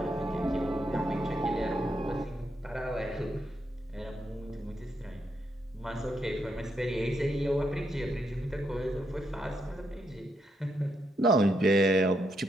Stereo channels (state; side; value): normal; both; correlation 0.80